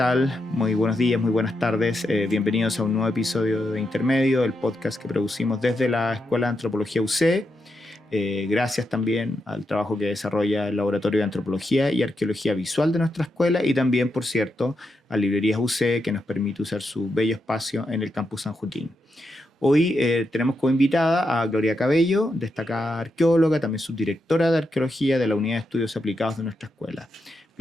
Muy buenos días, muy buenas tardes. Bienvenidos a un nuevo episodio de Intermedio, el podcast que producimos desde la Escuela de Antropología UC. Gracias también al trabajo que desarrolla el Laboratorio de Antropología y Arqueología Visual de nuestra escuela y también, por cierto, a Librerías UC, que nos permite usar su bello espacio en el Campus San Joaquín. Hoy tenemos como invitada a Gloria Cabello, destacada arqueóloga, también subdirectora de Arqueología de la Unidad de Estudios Aplicados de nuestra escuela.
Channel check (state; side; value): normal; both; correlation 0.85